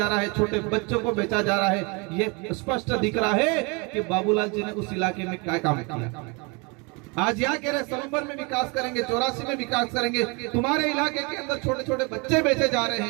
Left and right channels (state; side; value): quieter; left; 30.2 dB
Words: रहा है, छोटे बच्चों को बेचा जा रहा है। ये स्पष्ट दिख रहा है कि बाबूलाल जी ने उस इलाके में क्या काम किया। आज यहाँ कह रहे सलूमबर में विकास करेंगे, 84 में विकास करेंगे। तुम्हारे इलाके के अंदर छोटे छोटे बच्चे बेचे जा रहे